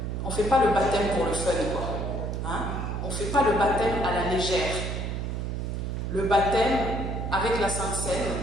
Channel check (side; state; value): right; noise; hum, 3 dB below the sound